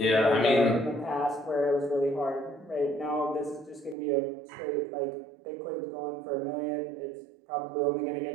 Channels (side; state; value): left; drops out; at 4.0 s